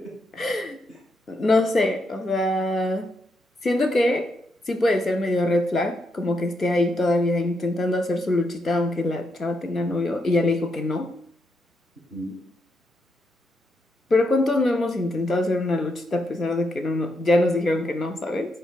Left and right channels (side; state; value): both; normal; correlation 0.80